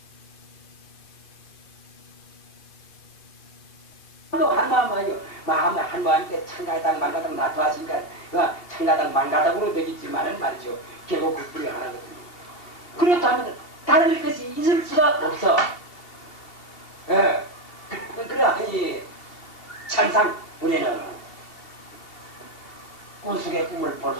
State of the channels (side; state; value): right; late; 2.4 ms